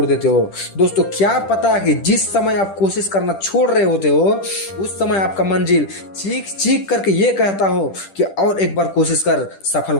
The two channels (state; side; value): late; right; 10 ms